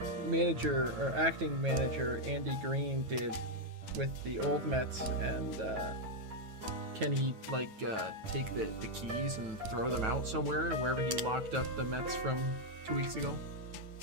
manager or acting manager Andy Green did with the old Mets, and can he like take the keys and throw them out somewhere, wherever he locked up the Mets from 2 weeks ago?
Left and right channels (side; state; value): left; late; 9.2 ms